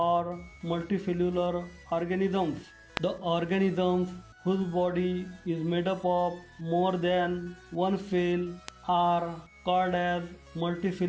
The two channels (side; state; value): both; identical; correlation 1.00